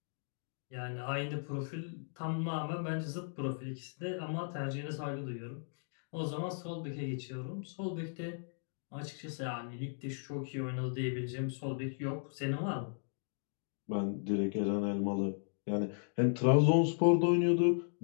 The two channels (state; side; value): silent; right; digital silence